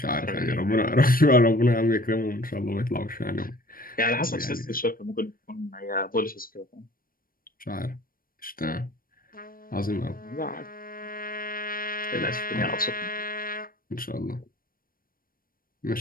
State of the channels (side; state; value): right; late; 0.41 ms